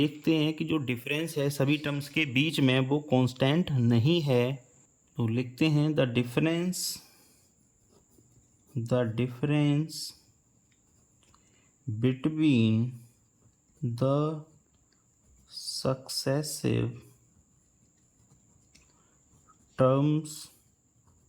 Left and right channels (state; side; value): identical; both; correlation 1.00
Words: हैं कि जो डिफरेंस है सभी टर्म्स के बीच में वो कांस्टेंट नहीं है। तो लिखते हैं the difference between the successive terms